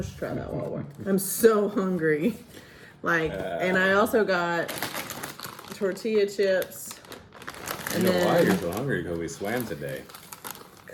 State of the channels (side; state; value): both; identical; correlation 1.00